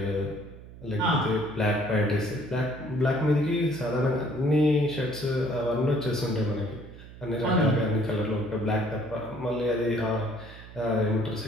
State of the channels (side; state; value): right; noise; hum, 17 dB below the sound